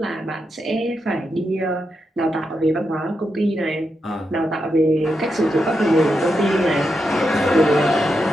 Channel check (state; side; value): normal; both; correlation 0.85